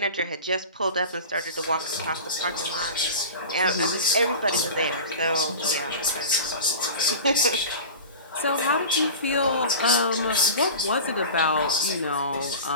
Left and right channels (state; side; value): inverted; both; correlation -0.34